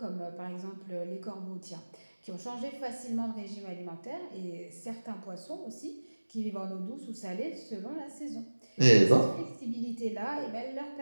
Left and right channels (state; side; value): inverted; both; correlation -1.00